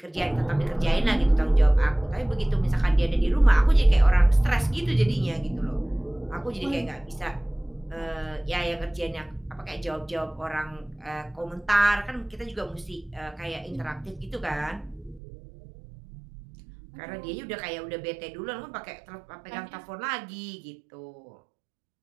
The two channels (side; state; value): left; drops out; at 15.2 s